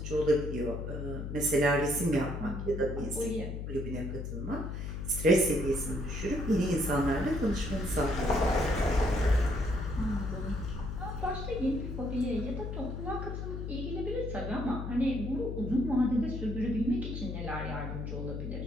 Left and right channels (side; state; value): left; noise; hum, 5 dB below the sound